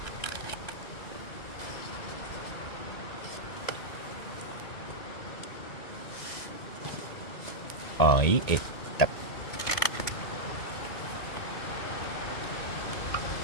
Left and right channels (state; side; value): late; right; 2.1 ms